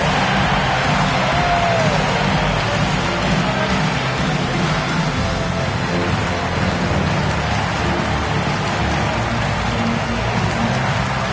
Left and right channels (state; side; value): identical; both; correlation 1.00